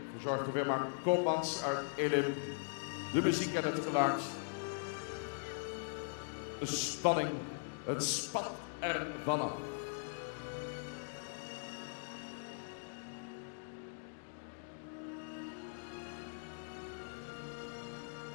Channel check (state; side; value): silent; right; digital silence